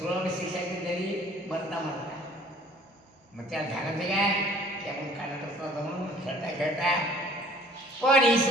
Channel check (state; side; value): normal; both; correlation 0.53